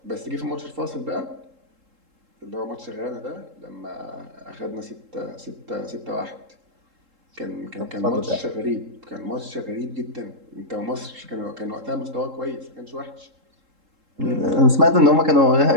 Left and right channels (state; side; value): late; left; 3.7 ms